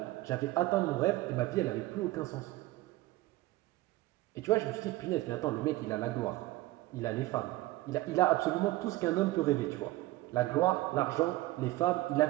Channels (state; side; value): quieter; left; 18.1 dB